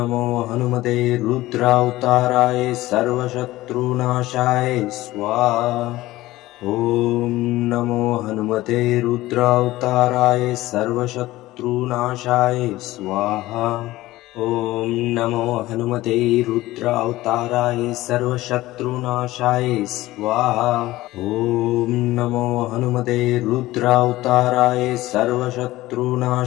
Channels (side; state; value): right; quieter; 17.3 dB